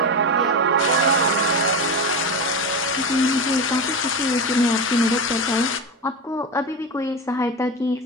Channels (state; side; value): normal; both; correlation 0.20